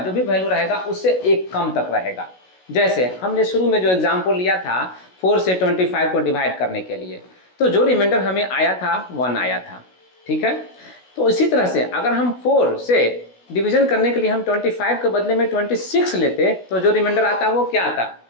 भी वैल्यू रहेगा उससे 1 कम तक रहेगा। जैसे हमने शुरू में जो एग्जाम्पल लिया था 4 से 25 को डिवाइड करने के लिए, तो जो रिमाइंडर हमें आया था 1 आया था। ठीक है, तो इसी तरह से अगर हम 4 से डिवीजन करने के लिए हम 25 के बदले में 26 लेते तो जो रिमाइंडर आता वो क्या आता,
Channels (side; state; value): right; late; 16 ms